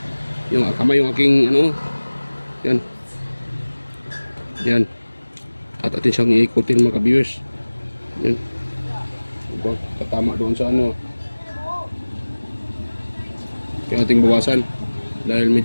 yung kamay, yung aking yan at atin siyang iikutin mga ka-viewers. Yan, katama doon sa kaya ating bawasan dahil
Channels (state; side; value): inverted; both; correlation -1.00